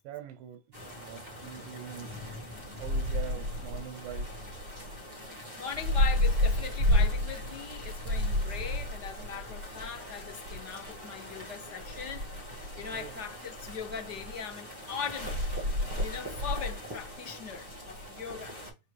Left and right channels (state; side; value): late; left; 9.5 ms